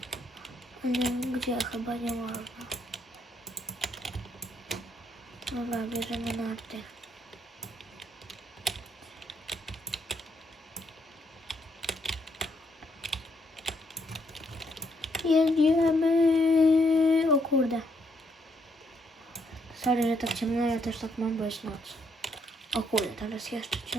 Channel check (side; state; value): both; normal; correlation 0.73